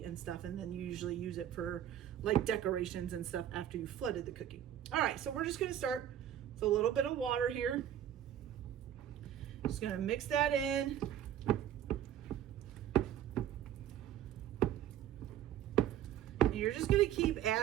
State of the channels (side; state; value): left; quieter; 10.9 dB